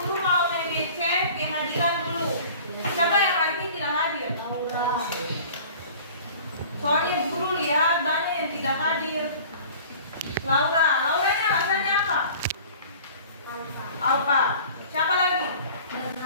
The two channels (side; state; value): both; inverted; correlation -0.45